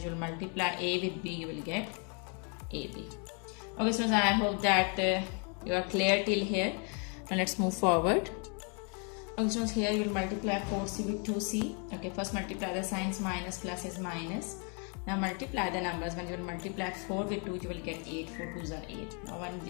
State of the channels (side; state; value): right; quieter; 38.0 dB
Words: will multiply a with b, you will get ab. Okay, so I hope that you are clear till here. Now let's move forward. Okay, so here you will multiply 4c with 2c. Okay, first multiply the signs, minus plus is minus. Now multiply the numbers. When you will multiply 4 with 2, you will get 8. 4 2s are